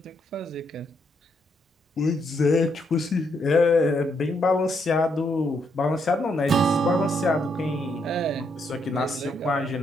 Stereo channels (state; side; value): normal; both; correlation 0.76